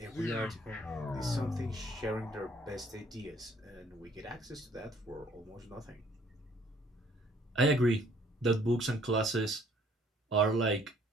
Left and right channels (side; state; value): both; normal; correlation 0.61